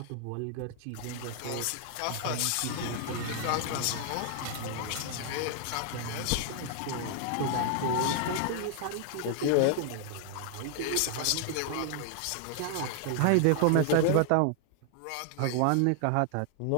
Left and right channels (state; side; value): different; both; correlation 0.00